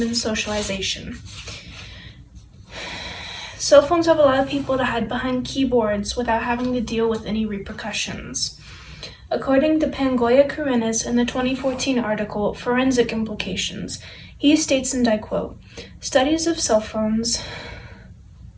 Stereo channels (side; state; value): both; identical; correlation 1.00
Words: socialization. Cell phones have allowed people to hide behind keyboards without having to deal with any repercussions. According to Pangoya Karenas in the 2014 article, Forensic Implications, he states, and I quote, "Studies of cell phones